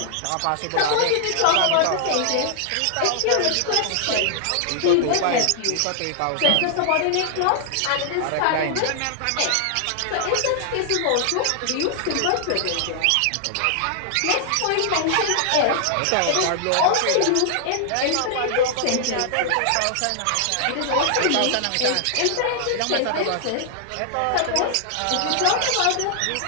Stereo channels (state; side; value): different; both; correlation 0.00